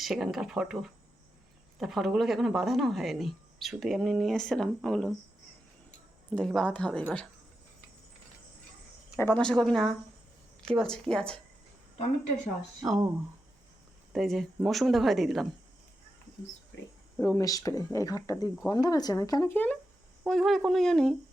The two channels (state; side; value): normal; both; correlation 0.88